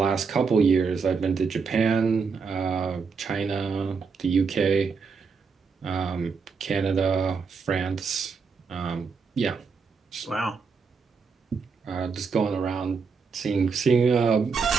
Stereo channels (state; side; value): quieter; left; 5.3 dB